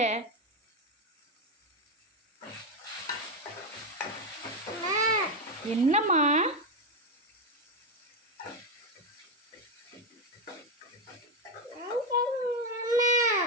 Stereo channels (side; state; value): both; normal; correlation 0.08